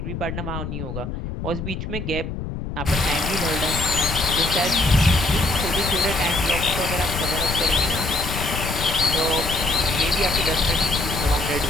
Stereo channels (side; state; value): left; noise; rumble, 6 dB below the sound